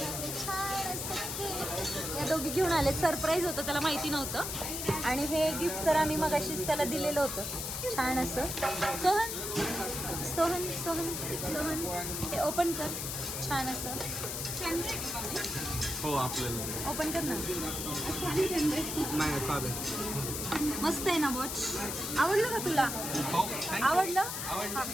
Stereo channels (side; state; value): left; noise; hiss, 4 dB below the sound